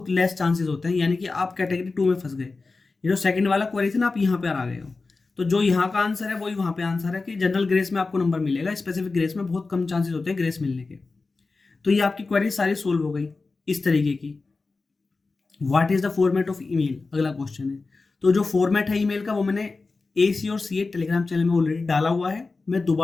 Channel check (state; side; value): quieter; right; 3.9 dB